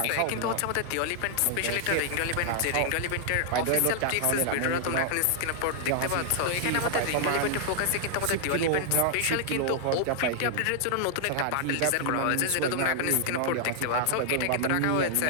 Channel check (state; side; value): different; both; correlation -0.01